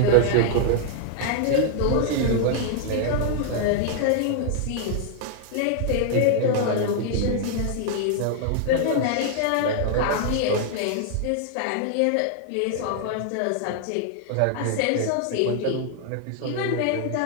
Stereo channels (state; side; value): different; both; correlation 0.00